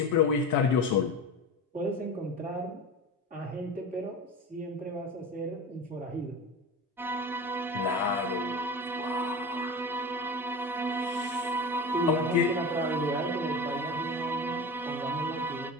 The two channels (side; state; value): both; normal; correlation 0.30